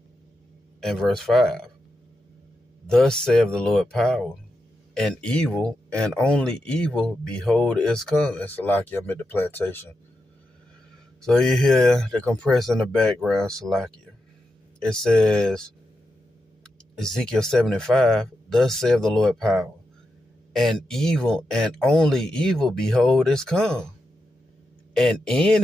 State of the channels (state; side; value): normal; both; correlation 0.87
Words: and verse 5. Thus saith the Lord power, and evil and only evil, behold, is come. And Salakia, I'm at the plantation. So you hear the compressor in the background, Salakia. It says, Ezekiel 7 and 5, thus saith the Lord power, and evil and only evil, behold, is come. And